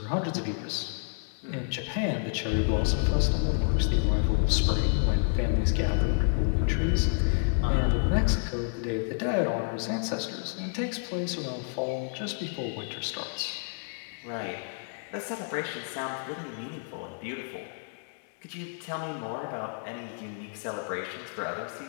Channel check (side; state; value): right; silent; 58 dB below the other